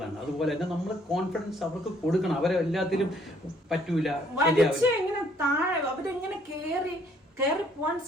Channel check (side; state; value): both; normal; correlation 0.64